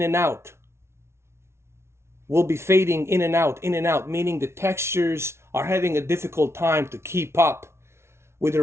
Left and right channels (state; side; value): late; left; 0.13 ms